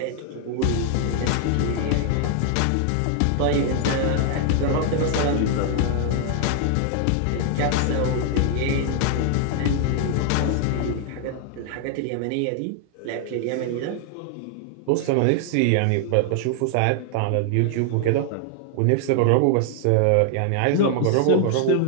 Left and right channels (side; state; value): both; different; correlation 0.00